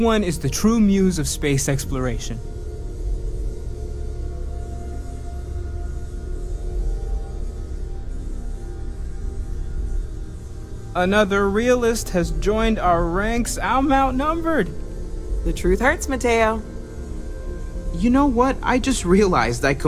is the true muse of space exploration? Another realist has joined our ranks. I'm outnumbered. The truth hurts, Mateo. You know what? I just realized I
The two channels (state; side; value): identical; both; correlation 1.00